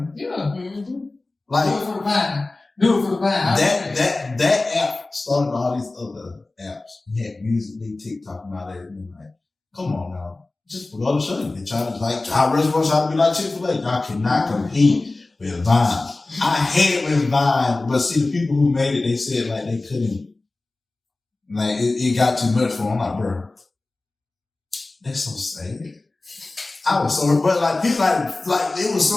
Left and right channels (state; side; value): quieter; right; 3.2 dB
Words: Yeah. Mm-hmm. Like, do it for the Vine. That app started all these other apps. You had Musical.ly, TikTok, and all that. And like, come on now. Just for the show you. They try to, like, our restaurants try to be like Chick-fil-A. Y'all cannot compete with Vine. I hate with Vine, but see, the people who made it, they said, like, they couldn't. Like, it got too much for them. I'm like, bro, that's so sad. I was so, but like, people like, it was